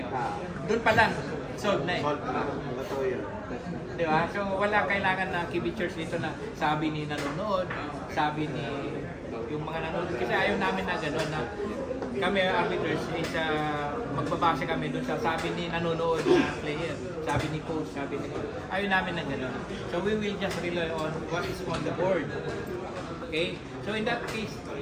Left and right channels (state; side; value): identical; both; correlation 1.00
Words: yun. Doon pa lang, solve na Solve na. Totoo yun. Di ba? So wala kailangan na kibitchers dito na sabi ni nanonood, sabi ni yung mga nanonood. Kasi ayaw namin na gano'n na kami arbiters is magbabase kami doon sa sabi ni nanonood na player, sabi ni coach, sabi ni ayaw namin na gano'n. So we will just rely on what is on the board. Okay? So in that case,